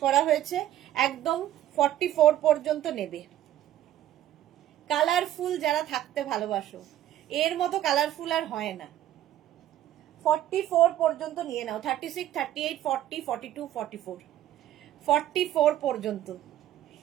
করা হয়েছে। একদম 44 পর্যন্ত নেবে। কালারফুল যারা থাকতে ভালোবাসো, এর মতো কালারফুল আর হয় না। 44 পর্যন্ত নিয়ে নাও। 36, 38, 40, 42, 44, 44 পর্যন্ত।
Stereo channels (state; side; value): quieter; left; 12.6 dB